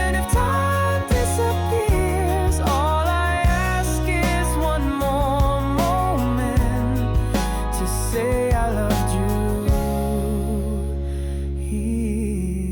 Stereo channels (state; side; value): identical; both; correlation 1.00